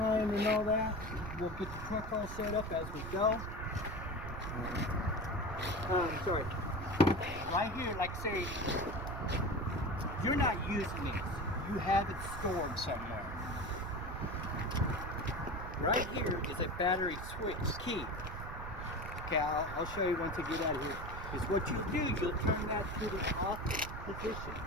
and all that. We'll get the truck all set up as we go. Sorry. Right here, like say, you're not using this. You have it stored somewhere. Right here is a battery switch key. Okay, I'll show you once I get out of here. Is what you do, you'll turn that to the off position.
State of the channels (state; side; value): noise; right; rumble, 9 dB below the sound